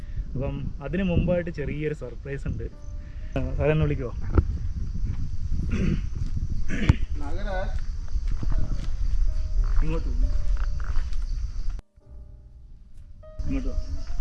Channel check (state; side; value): identical; both; correlation 1.00